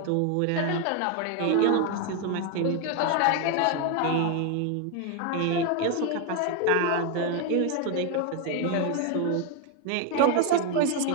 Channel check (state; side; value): different; both; correlation 0.01